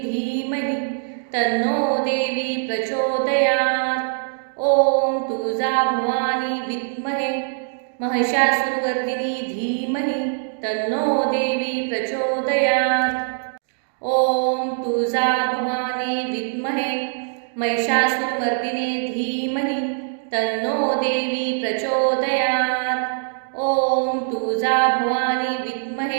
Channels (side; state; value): left; silent; digital silence